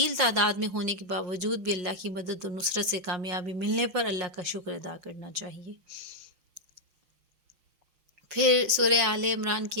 تعداد میں ہونے کے باوجود بھی اللہ کی مدد و نصرت سے کامیابی ملنے پر اللہ کا شکر ادا کرنا چاہیے۔ پھر سورہ آل عمران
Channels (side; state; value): left; late; 5.7 ms